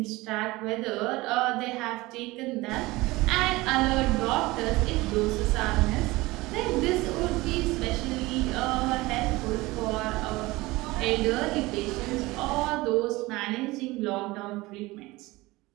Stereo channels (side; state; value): left; quieter; 20.8 dB